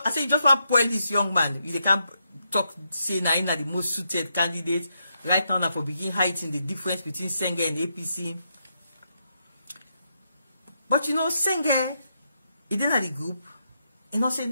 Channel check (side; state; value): both; inverted; correlation -0.81